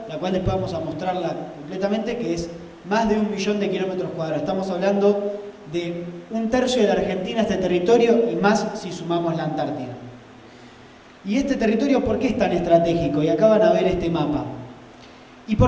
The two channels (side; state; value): both; identical; correlation 1.00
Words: la cual después vamos a mostrarla completamente, que es más de 1 millón de kilómetros cuadrados. Estamos hablando de 1/3 de la Argentina, este territorio, y más si sumamos la Antártida. ¿Y este territorio por qué es tan estratégico? Y acá van a ver este mapa. ¿Y